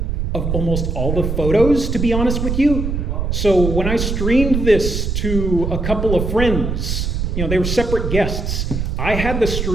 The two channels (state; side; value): noise; right; rumble, 2 dB below the sound